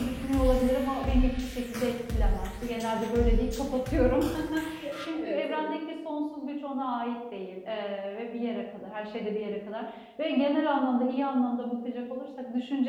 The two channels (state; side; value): identical; both; correlation 1.00